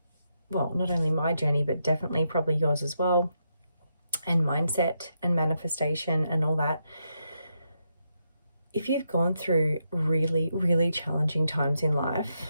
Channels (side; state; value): both; inverted; correlation -0.82